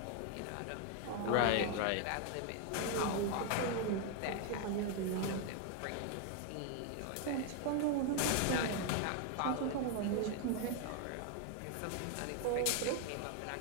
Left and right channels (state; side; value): different; both; correlation 0.01